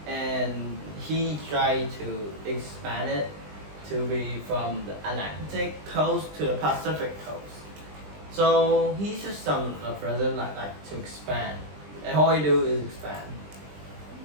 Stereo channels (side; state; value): left; late; 20 ms